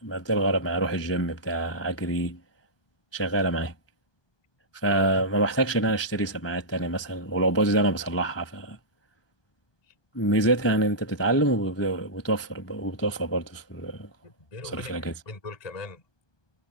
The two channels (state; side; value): late; right; 1.2 ms